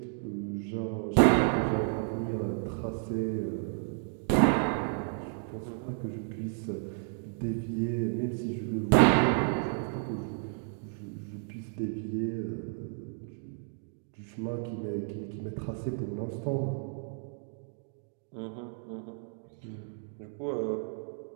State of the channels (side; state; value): left; silent; 56 dB below the other